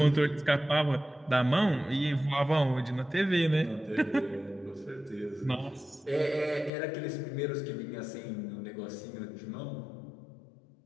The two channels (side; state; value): right; drops out; at 6.7 s